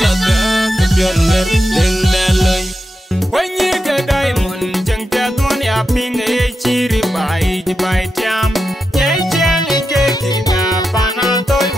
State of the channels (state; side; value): normal; both; correlation 0.88